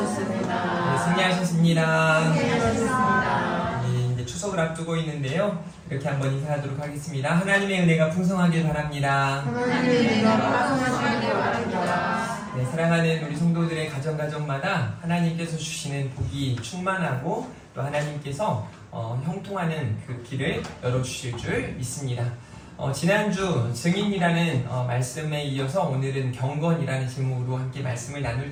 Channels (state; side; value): identical; both; correlation 1.00